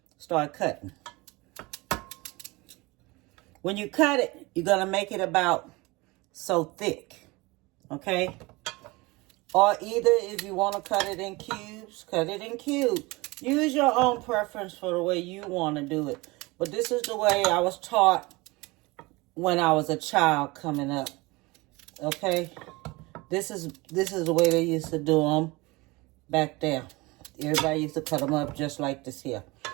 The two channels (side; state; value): left; quieter; 23.5 dB